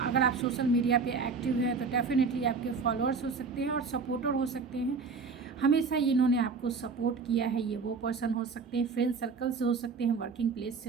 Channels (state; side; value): quieter; left; 4.8 dB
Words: आप सोशल मीडिया पे एक्टिव हैं तो डेफिनेटली आपके फॉलोअर्स हो सकते हैं और सपोर्टर हो सकते हैं। हमेशा इन्होंने आपको सपोर्ट किया है, ये वो पर्सन हो सकते हैं, फ्रेंड सर्कल से हो सकते हैं, वर्किंग प्लेस